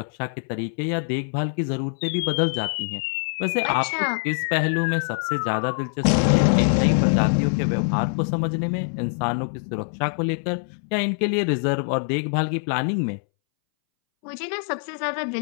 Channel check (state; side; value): silent; right; 62 dB below the other